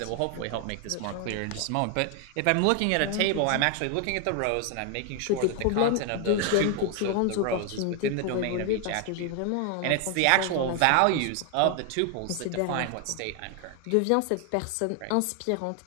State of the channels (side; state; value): both; different; correlation 0.00